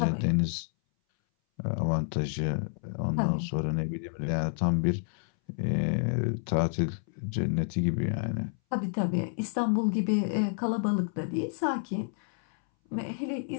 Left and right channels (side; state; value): right; silent; 58 dB below the other